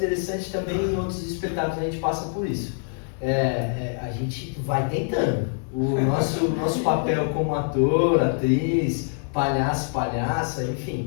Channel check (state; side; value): silent; right; 62 dB below the other